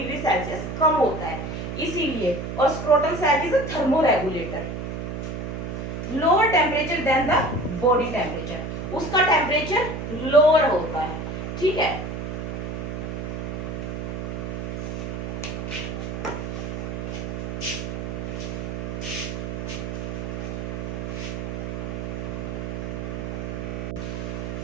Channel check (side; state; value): right; noise; hum, 4 dB below the sound